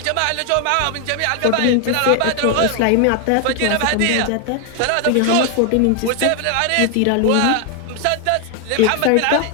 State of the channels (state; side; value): different; both; correlation 0.01